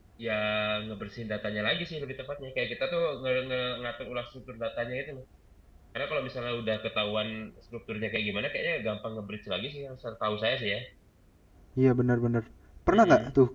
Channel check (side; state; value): both; identical; correlation 1.00